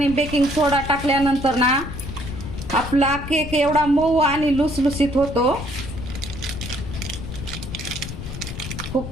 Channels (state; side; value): noise; left; rumble, 8 dB below the sound